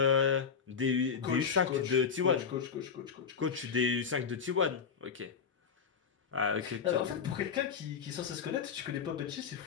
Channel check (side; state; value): right; quieter; 6.4 dB